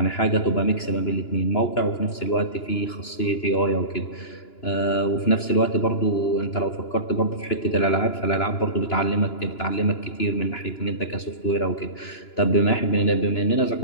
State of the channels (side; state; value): right; late; 2.9 ms